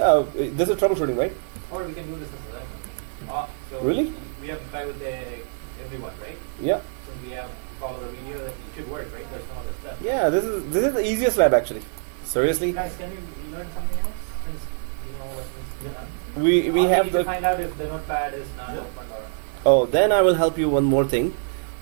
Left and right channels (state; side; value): silent; left; digital silence